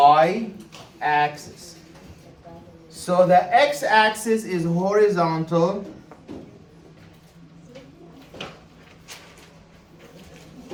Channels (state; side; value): identical; both; correlation 1.00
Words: So the x-axis is horizontal.